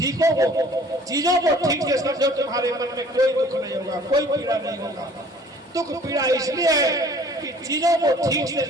को, चीजों को ठीक से समझो, तुम्हारे मन में कोई दुख नहीं होगा, कोई पीड़ा नहीं होगा। दुख पीड़ा इसलिए है कि चीजों को ठीक से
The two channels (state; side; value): normal; both; correlation 0.52